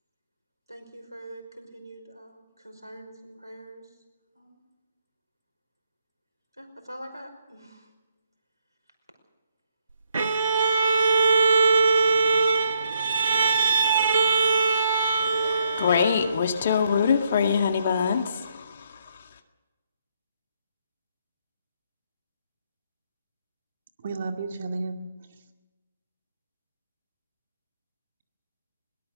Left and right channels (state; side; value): inverted; both; correlation -0.74